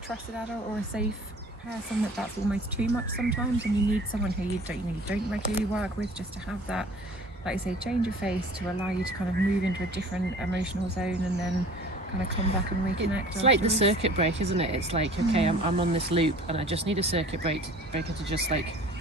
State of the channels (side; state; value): both; normal; correlation 0.46